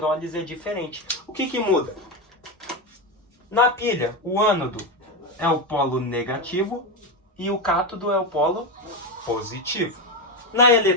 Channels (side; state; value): both; normal; correlation 0.12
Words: é diferente. O que muda? Na pilha, o ânodo é o polo negativo e o cátodo é o polo positivo. Na